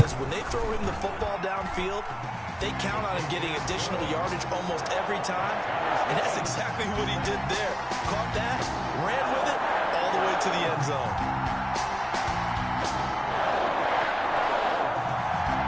when they throw him the football downfield, they count on him getting additional yardage almost every time. And that's exactly what he did there. Caught that, ran with it, all the way to the end zone.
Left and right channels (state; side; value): identical; both; correlation 1.00